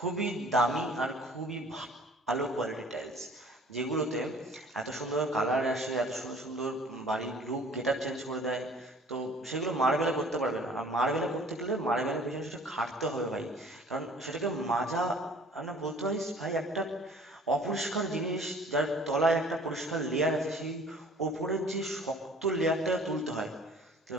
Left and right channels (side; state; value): both; normal; correlation 0.51